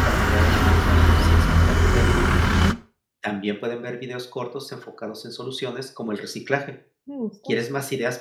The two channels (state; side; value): identical; both; correlation 1.00